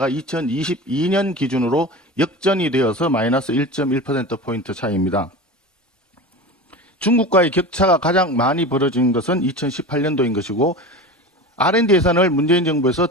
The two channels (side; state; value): both; normal; correlation 0.30